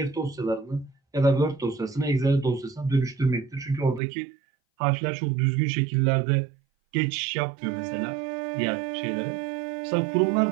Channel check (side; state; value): left; drops out; at 4.0 s